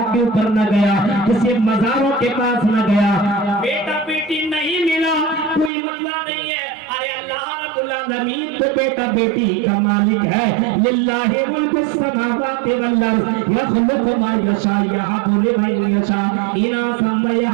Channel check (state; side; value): drops out; left; at 5.7 s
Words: کے اوپر نہ گیا, کسی مزاروں کے پاس نہ گیا. بیٹا بیٹی نہیں ملا کوئی مسئلہ نہیں ہے, ارے اللہ رب العالمین تو بیٹا بیٹی کا مالک ہے. للہ ملک السماوات والارض یخلق ما یشاء یہب لمن یشاء اناثا